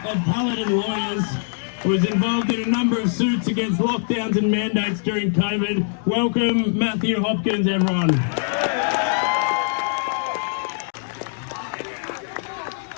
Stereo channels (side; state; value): right; silent; 64 dB below the other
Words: of Paladin Lawyers, who was involved in a number of suits against lockdowns and mandates during COVID. Welcome, Matthew Hopkins, everyone.